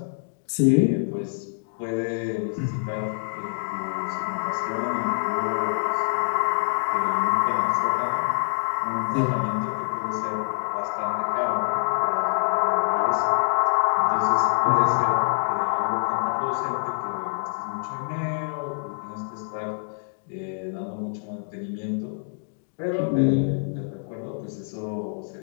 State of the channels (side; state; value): right; silent; digital silence